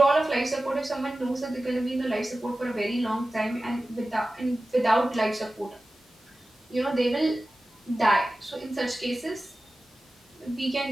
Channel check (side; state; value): both; normal; correlation 0.95